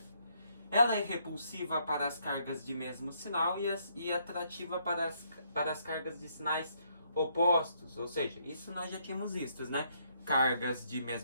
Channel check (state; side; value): inverted; both; correlation -0.72